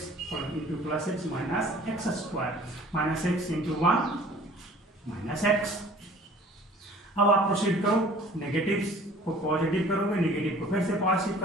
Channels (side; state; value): both; normal; correlation 0.50